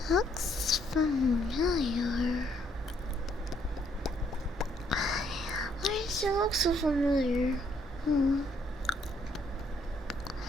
Looks familiar. Why does it look so familiar?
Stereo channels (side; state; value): both; normal; correlation 0.69